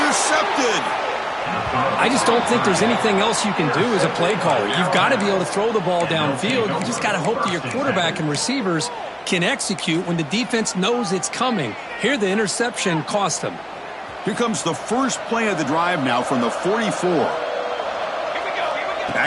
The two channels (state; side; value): identical; both; correlation 1.00